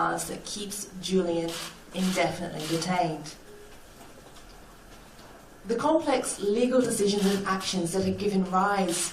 that keeps Julian indefinitely detained. The complex legal decisions and actions that have given rise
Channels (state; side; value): identical; both; correlation 1.00